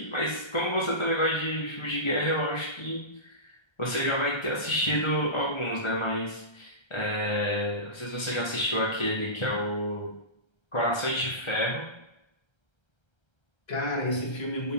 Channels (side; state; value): right; late; 1.3 ms